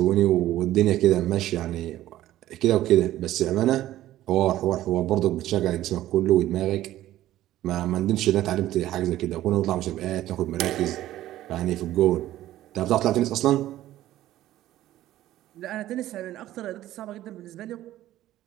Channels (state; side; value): quieter; left; 14.2 dB